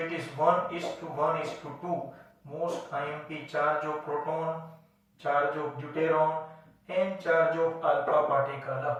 It is 1:1:2. Most IMP, charge of proton charge of deuteron, and charge of alpha particle.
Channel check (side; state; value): both; identical; correlation 1.00